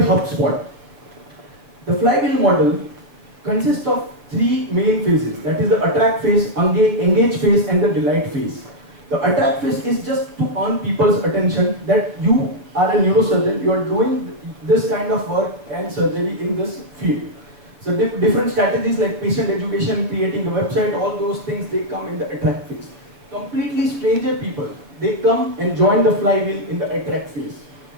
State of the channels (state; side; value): late; left; 6.7 ms